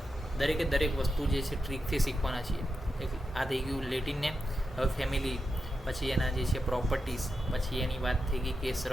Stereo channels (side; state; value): both; normal; correlation 0.88